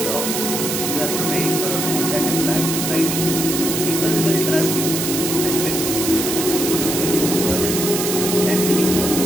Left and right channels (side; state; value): right; noise; hiss, 2 dB below the sound